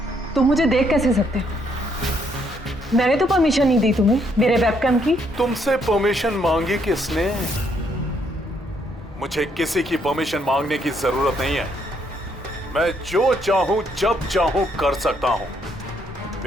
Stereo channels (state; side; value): normal; both; correlation 0.72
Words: तुम मुझे देख कैसे सकते हो? मैंने तो परमिशन नहीं दी तुम्हें मेरे वेबकैम की। तुमसे परमिशन मांगी किसने? मुझे किसी की परमिशन मांगने की जरूरत नहीं है। मैं जो चाहूं जब चाहूं कर सकता हूं।